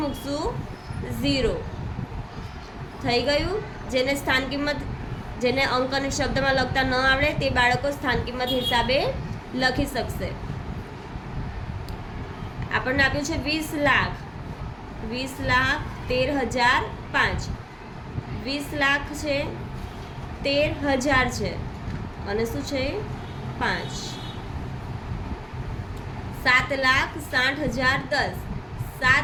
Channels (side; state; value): both; identical; correlation 1.00